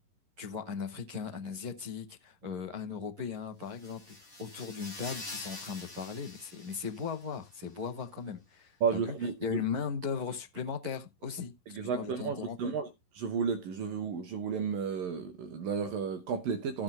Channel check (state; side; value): late; left; 11 ms